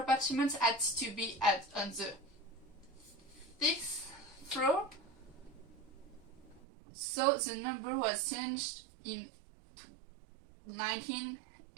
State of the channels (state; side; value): drops out; left; at 6.6 s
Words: had to be on the 6th floor, so the number was changed in 19